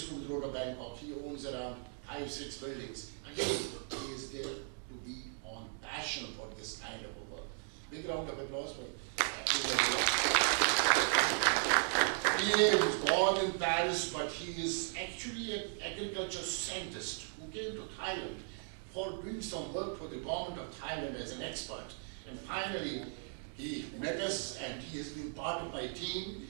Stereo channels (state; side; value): silent; left; 53 dB below the other